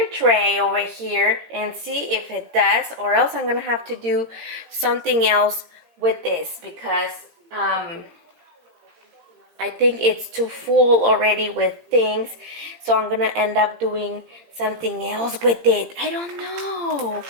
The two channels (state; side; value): late; left; 17 ms